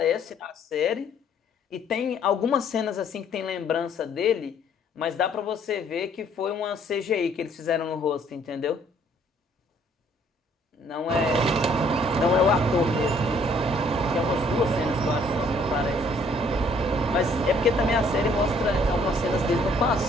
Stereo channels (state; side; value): normal; both; correlation 0.62